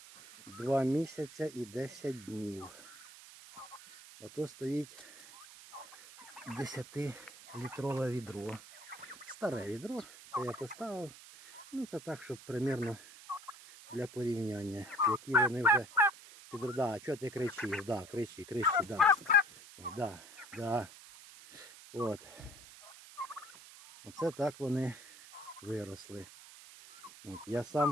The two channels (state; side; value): noise; right; hiss, 18 dB below the sound